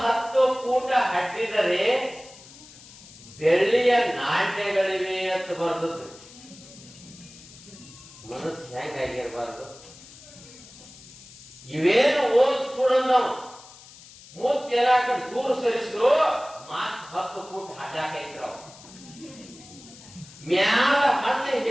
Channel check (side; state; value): left; noise; hiss, 20 dB below the sound